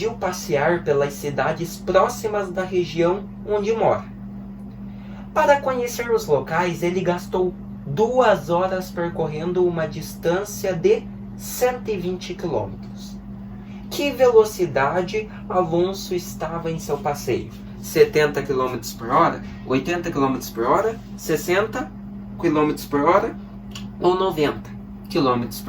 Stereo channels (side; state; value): both; identical; correlation 1.00